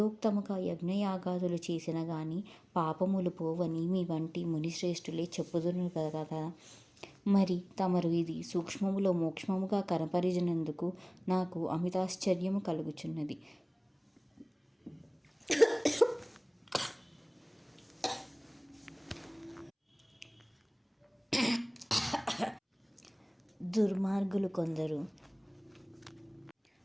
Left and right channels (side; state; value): both; identical; correlation 1.00